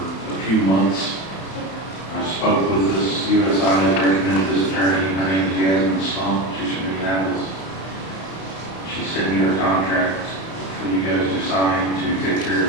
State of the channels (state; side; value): late; right; 31 ms